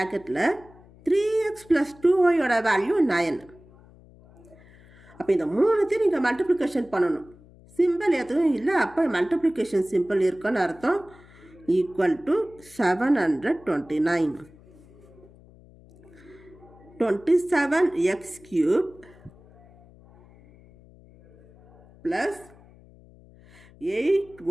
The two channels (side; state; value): left; noise; hum, 25 dB below the sound